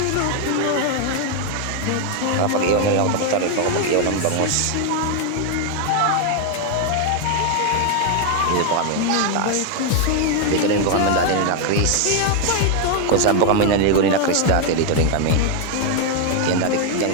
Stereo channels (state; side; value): different; both; correlation 0.00